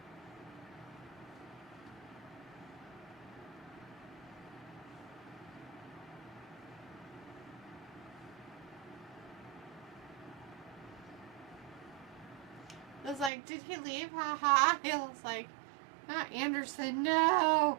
I was like, did he leave? Haha. He was like, not Anderson. No.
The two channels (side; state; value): left; drops out; at 13.3 s